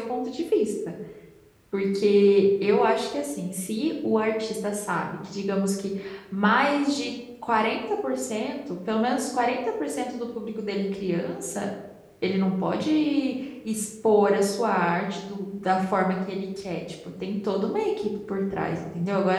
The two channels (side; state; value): both; identical; correlation 1.00